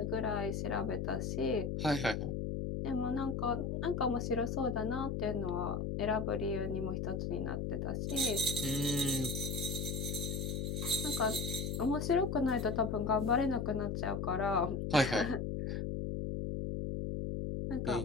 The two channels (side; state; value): left; noise; hum, 1 dB below the sound